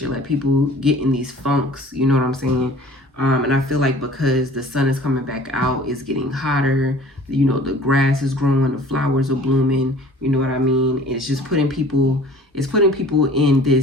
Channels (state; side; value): normal; both; correlation 0.47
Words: Like, people get in these funks, you know what I'm saying? And I feel like because the sun is coming back out, it's getting hotter, you know, the grass is growing, the flowers are blooming, you know what I mean? It's just putting people in